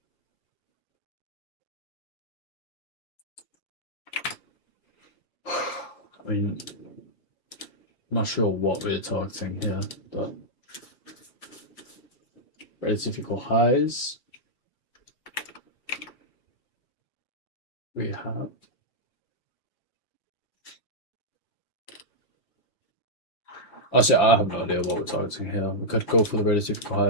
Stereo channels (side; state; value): right; late; 5.8 ms